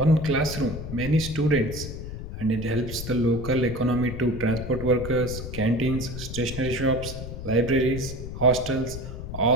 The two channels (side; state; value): left; noise; rumble, 8 dB below the sound